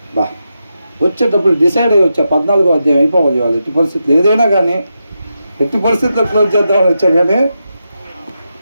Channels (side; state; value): both; inverted; correlation -0.87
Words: బా వచ్చేటప్పుడు డిసైడ్ అయ్యి వచ్చా 14వ అధ్యాయం అయిపోవాలి. వాళ్ళు ఎట్టి పరిస్థితులు ఏదైనా కానీ ఎట్టి పరిస్థితుల్లో క్లోజ్ చేద్దామని వచ్చా, కానీ